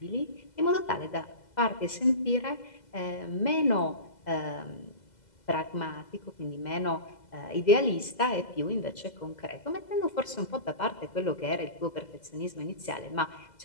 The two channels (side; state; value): right; late; 2.0 ms